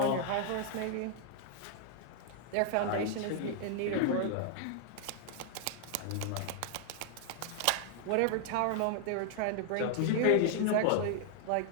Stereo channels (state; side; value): different; both; correlation 0.00